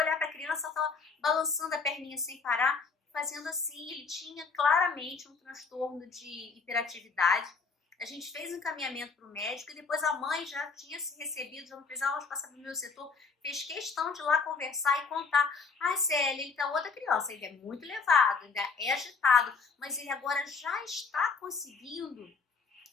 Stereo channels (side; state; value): right; quieter; 4.9 dB